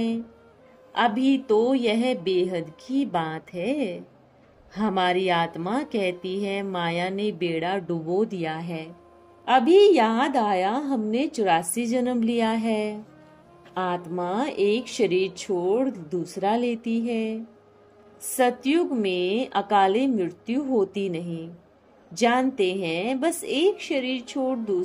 अभी तो यह बेहद की बात है। हमारी आत्मा कहती है माया ने बेड़ा डुबो दिया है। अभी याद आया हमने 84 जन्म लिया है। आत्मा एक शरीर छोड़ दूसरा लेती है। सतयुग में अकाले मृत्यु होती नहीं। जानते हैं बस एक शरीर छोड़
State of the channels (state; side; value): identical; both; correlation 1.00